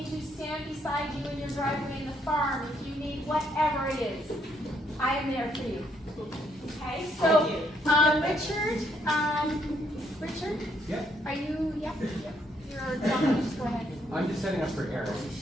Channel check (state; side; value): normal; both; correlation 0.72